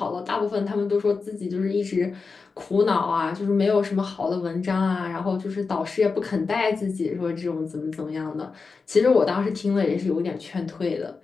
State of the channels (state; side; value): quieter; right; 4.6 dB